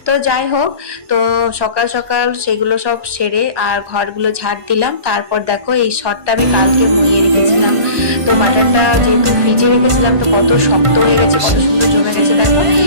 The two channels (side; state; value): left; late; 1.5 ms